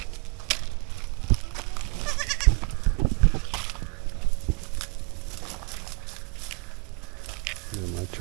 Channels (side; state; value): left; quieter; 31.8 dB